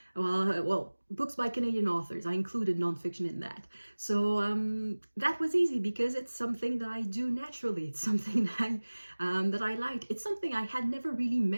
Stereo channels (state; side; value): inverted; both; correlation -1.00